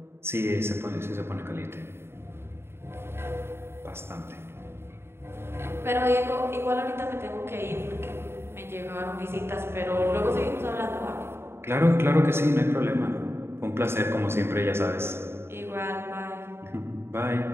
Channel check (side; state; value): left; late; 0.12 ms